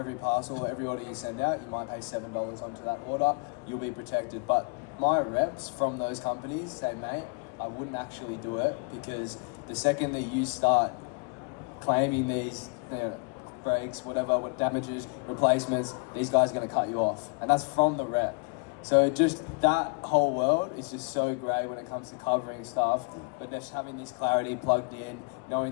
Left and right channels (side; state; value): right; quieter; 34.0 dB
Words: parcel, every order you send out, you might pay $7 onto that order, you'll be protected. But my reps from those companies say, mate, I wouldn't actually do it, because the second that you start claiming these, you know, breaks, whatever, what damages, replacements, these guys are going to cut you off. And that's from the rep. So just that whole world is just so great when it comes to covering stuff, but just having this clarity plugged in,